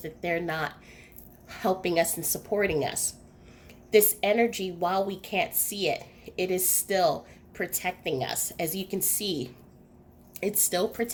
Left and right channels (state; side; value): identical; both; correlation 1.00